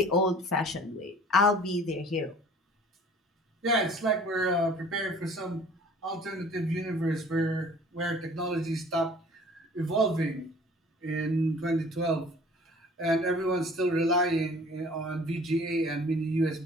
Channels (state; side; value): normal; both; correlation 0.49